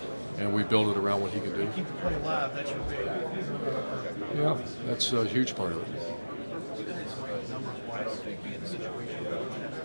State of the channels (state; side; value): inverted; both; correlation -1.00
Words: and we build it around what he can do. Keep the play alive. That's your big. Yeah, that's a huge part of it.